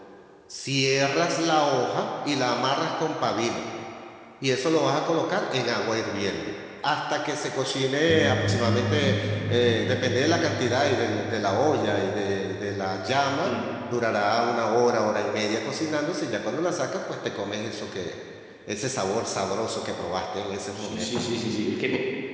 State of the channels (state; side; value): identical; both; correlation 1.00